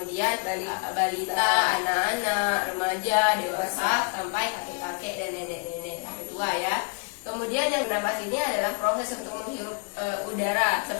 balita, anak-anak, remaja, dewasa, sampai kakek-kakek dan nenek-nenek sampai tua ya. Kemudian yang bernapas ini adalah proses untuk menghirup udara.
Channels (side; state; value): right; quieter; 38.4 dB